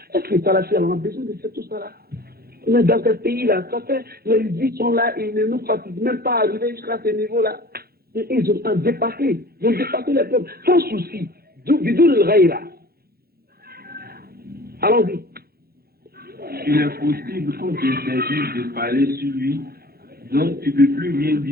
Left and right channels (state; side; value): late; left; 0.45 ms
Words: Est-ce que ça là, on a besoin de faire tout ça là? Mais dans ce pays-là, ça fait, les vies sont là, ils ne nous fatiguent même pas à arriver jusqu'à ce niveau-là. Ils ont dépassé, ils ont dépassé les peuples, sans souci. D'où le raïra. Allons-y. Il est possible qu'on t'interdise de parler sur lui, donc tu ne peux plus rien